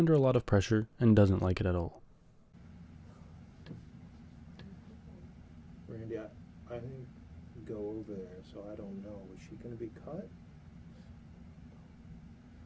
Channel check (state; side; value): identical; both; correlation 1.00